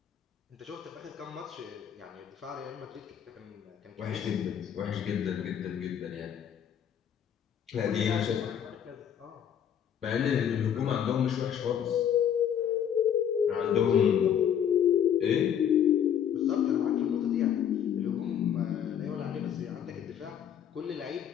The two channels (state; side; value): quieter; right; 9.0 dB